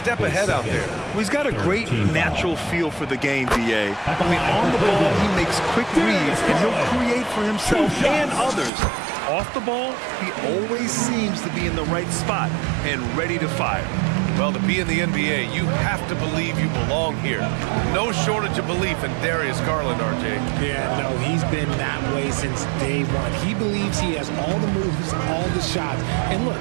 ahead out there. Well, he's got a great natural feel for the game, B.A. I mean, on the ball, he makes quick reads, and he'll create for himself and others. Off the ball, he always seems to be in the right spot and ready to fire. Well, to be in the NBA, you have to believe you belong here. No shortage of belief in Darius Garland, RJ. Yeah, no, he's been that way since day one. He believes he has all the moves, all the shots. And look,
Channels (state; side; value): drops out; left; at 8.7 s